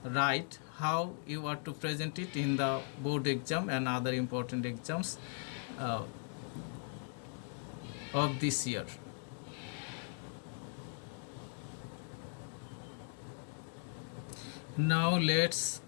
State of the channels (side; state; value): right; silent; 52 dB below the other